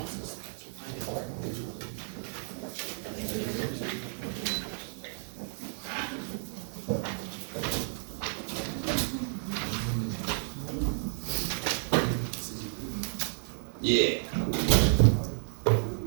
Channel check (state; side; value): silent; left; 57 dB below the other